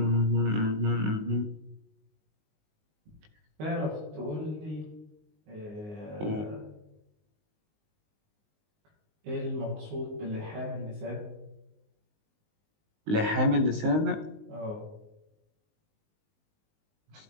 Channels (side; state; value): left; late; 19 ms